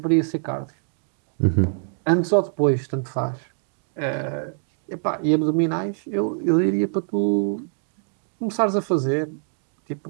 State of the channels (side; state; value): left; silent; digital silence